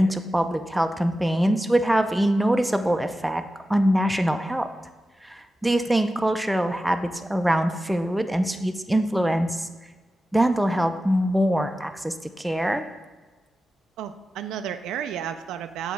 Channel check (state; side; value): normal; both; correlation 0.93